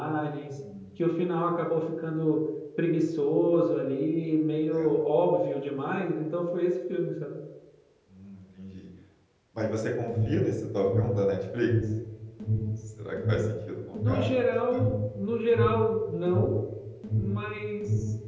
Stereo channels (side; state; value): both; identical; correlation 1.00